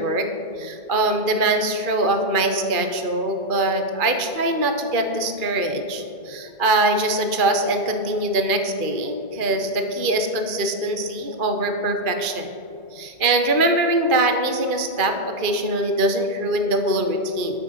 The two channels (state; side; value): late; left; 2.3 ms